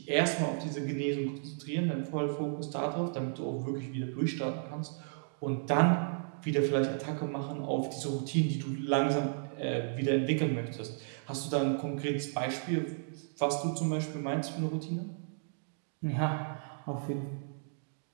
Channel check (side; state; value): left; silent; digital silence